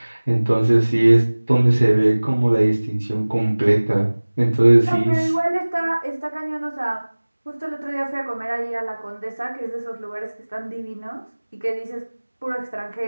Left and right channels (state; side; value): inverted; both; correlation -1.00